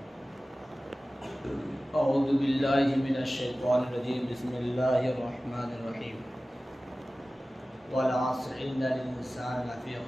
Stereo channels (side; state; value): both; normal; correlation 0.96